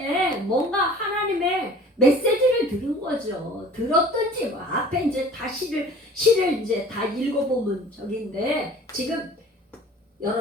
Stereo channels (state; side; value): normal; both; correlation 0.47